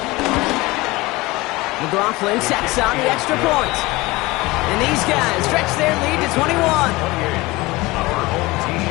McLaughlin sacks on the extra point. And these guys stretch their lead to 21. Our home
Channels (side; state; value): right; quieter; 21.4 dB